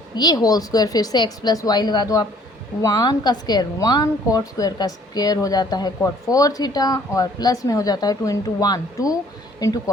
ये होल स्क्वायर, फिर से x प्लस वाई लगा दो आप, 1 का स्क्वायर 1, कॉट स्क्वायर का स्क्वायर हो जाता है कॉट 4 थीटा, और प्लस में हो जाता है 2 into 1 2 into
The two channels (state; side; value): normal; both; correlation 0.58